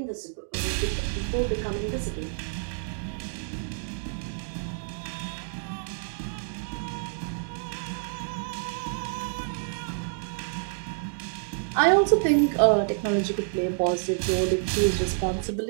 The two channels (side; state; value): left; silent; digital silence